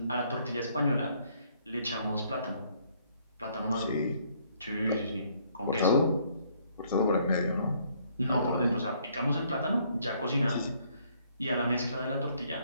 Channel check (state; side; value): inverted; both; correlation -0.66